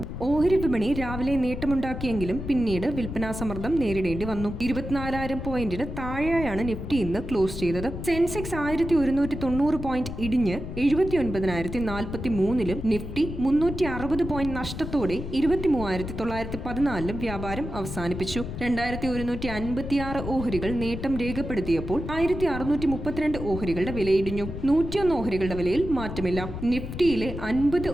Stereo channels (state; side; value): noise; left; rumble, 7 dB below the sound